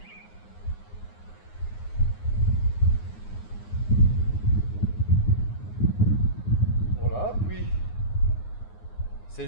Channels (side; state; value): right; late; 9.6 ms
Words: Voilà, puis c'est